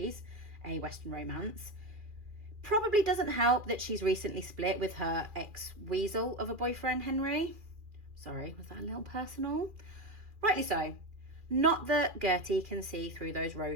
a Western romance. Probably doesn't help that she's recently split with her ex-weasel of a boyfriend, Henry. Sorry, was that a little personal? Rightly so. Not that Gertie can see through those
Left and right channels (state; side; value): late; left; 2.4 ms